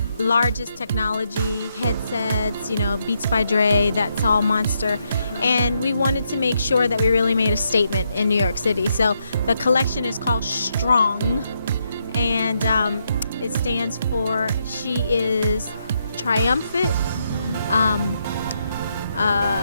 largest technology headsets, Beats by Dre, that's all Monster. And we wanted to make sure that we really made a statement in New York City. So the collection is called S.T.R.O.N.G, and it stands for She is Triumphant,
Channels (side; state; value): both; inverted; correlation -0.79